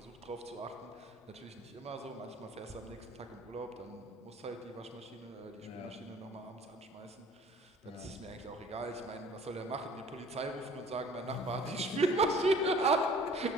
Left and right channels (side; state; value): both; normal; correlation 0.50